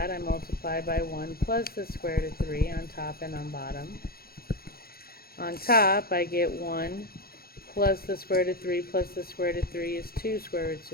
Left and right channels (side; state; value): right; late; 0.44 ms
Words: I multiply by 1 plus the square root of 3 on top and on bottom. On top, I get 1 plus the square root of 3 plus the square root of 3 is 2 square roots